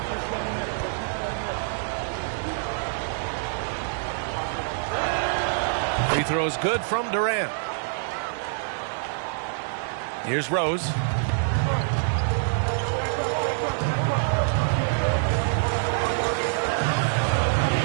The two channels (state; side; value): silent; left; 61 dB below the other